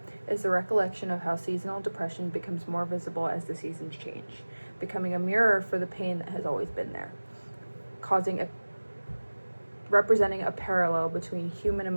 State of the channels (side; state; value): both; inverted; correlation -1.00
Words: is the recollection of how seasonal depression becomes more visible as the seasons change, becoming a mirror for the pain that has always been there, representing a parallel between human